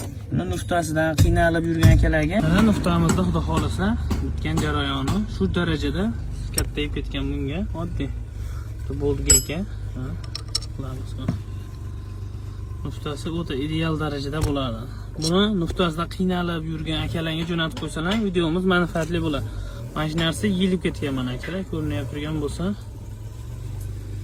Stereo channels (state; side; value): identical; both; correlation 1.00